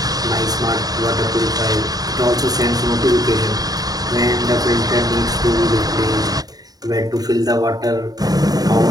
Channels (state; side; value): late; left; 0.18 ms